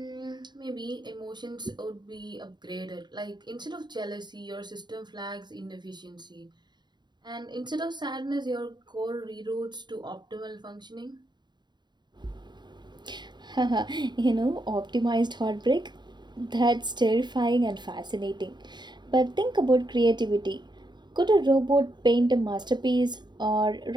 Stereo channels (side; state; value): left; late; 0.21 ms